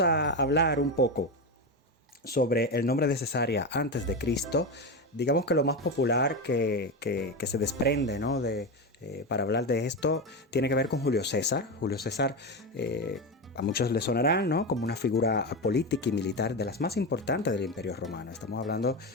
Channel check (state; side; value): normal; both; correlation 0.16